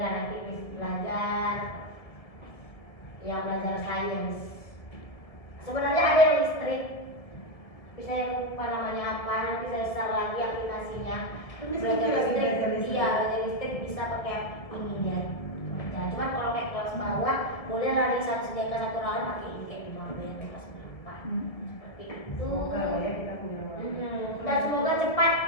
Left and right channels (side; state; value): right; late; 1.9 ms